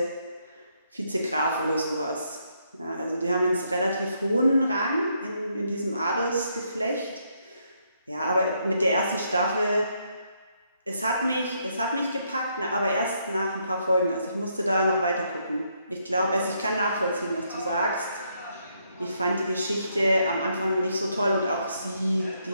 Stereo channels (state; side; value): inverted; both; correlation -0.75